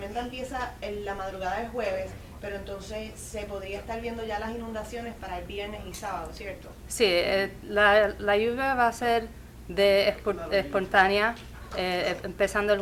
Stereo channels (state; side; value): identical; both; correlation 1.00